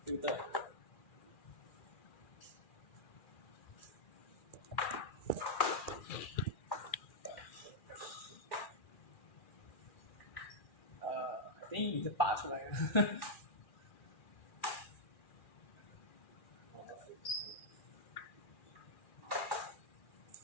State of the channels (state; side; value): late; right; 2.4 ms